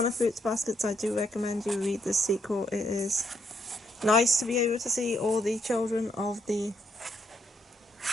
of Fruits Baskets, I do recommend you read this sequel. It is nice to be able to see all the children of the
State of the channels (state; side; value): normal; both; correlation 0.75